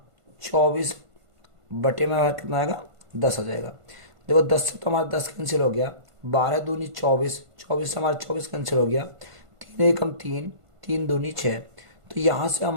24 बटे में कितना आएगा, 10 आ जाएगा। देखो, 10 से तो हमारा 10 कैंसिल हो गया, 12 दूनी 24, 24 से हमारा 24 कैंसिल हो गया, 3 एकम 3, 3 दूनी 6। तो यहाँ से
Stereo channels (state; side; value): late; left; 1.5 ms